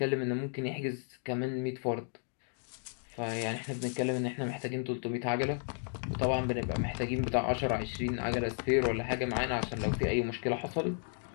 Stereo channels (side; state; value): right; silent; 55 dB below the other